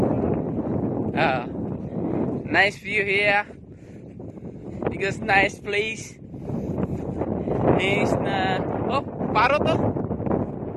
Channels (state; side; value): identical; both; correlation 1.00